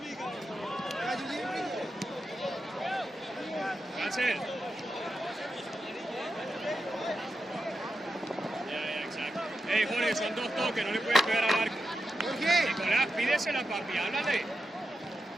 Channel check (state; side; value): normal; both; correlation 0.88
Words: Rachel. Ya, exacto. Hey, Jorge, son 2 toques, no le puedes pegar al arco. ¿Por qué? Nicolás, pídesela, papi, háblale.